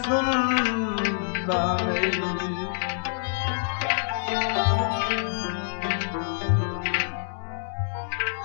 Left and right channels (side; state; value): right; silent; digital silence